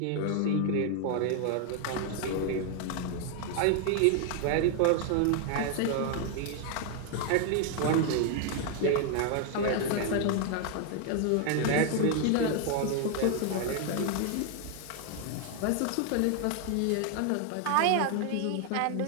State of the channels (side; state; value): both; different; correlation 0.00